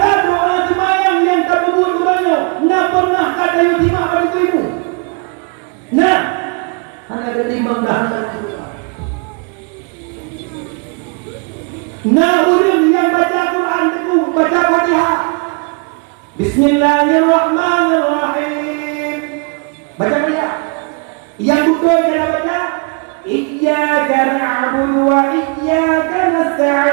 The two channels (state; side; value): quieter; left; 35.1 dB